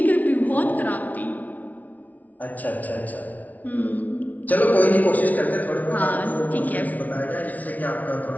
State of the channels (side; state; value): right; late; 0.074 ms